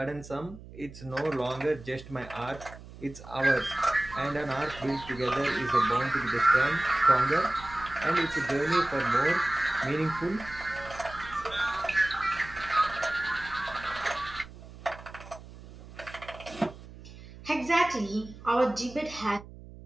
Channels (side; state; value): right; noise; hum, 17 dB below the sound